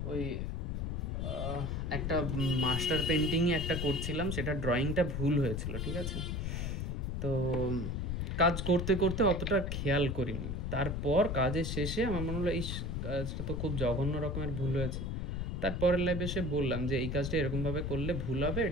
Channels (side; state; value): left; noise; rumble, 2 dB below the sound